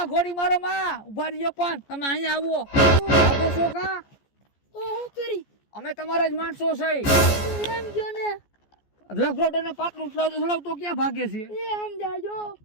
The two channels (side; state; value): right; late; 14 ms